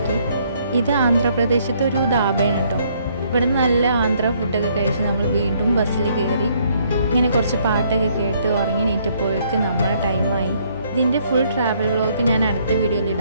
ഇത് ആന്ധ്രാപ്രദേശത്തെ ഒരു ധാബയാണ് കേട്ടോ. ഇവിടെ നിന്ന് നല്ല ആന്ധ്ര ഫുഡൊക്കെ കഴിച്ച് നമ്മൾ വീണ്ടും ബസ്സിൽ കയറി. ഇങ്ങനെ കുറച്ച് പാട്ടൊക്കെ കേട്ട് ഉറങ്ങി നീറ്റപ്പോഴേക്ക് നമ്മളെ ടൈമായി. ഇതിൻ്റെ ഫുൾ ട്രാവൽ വ്ളോഗ് ഞാൻ അടുത്ത വീഡിയോയിൽ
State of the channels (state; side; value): inverted; both; correlation -0.67